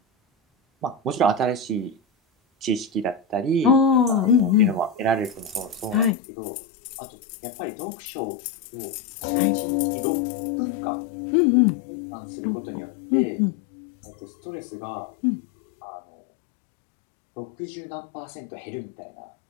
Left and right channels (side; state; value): right; drops out; at 6.2 s